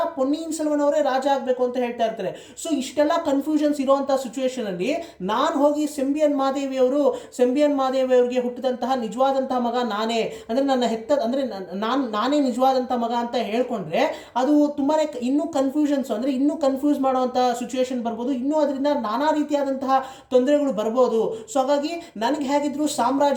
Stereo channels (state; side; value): identical; both; correlation 1.00